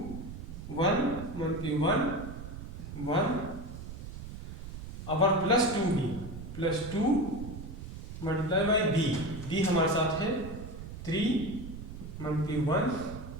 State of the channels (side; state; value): right; noise; rumble, 10 dB below the sound